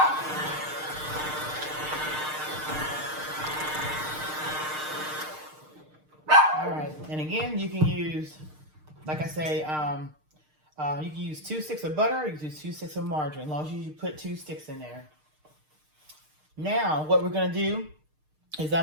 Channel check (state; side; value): late; left; 6.5 ms